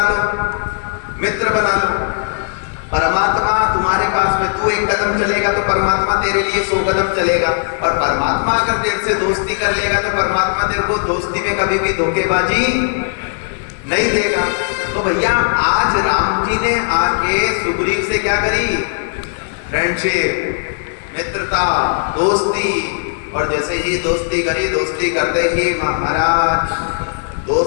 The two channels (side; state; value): right; silent; digital silence